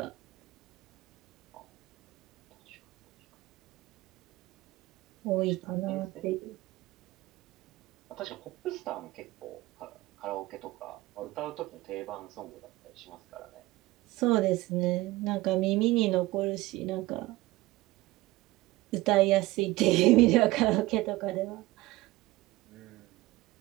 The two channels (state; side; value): quieter; left; 19.0 dB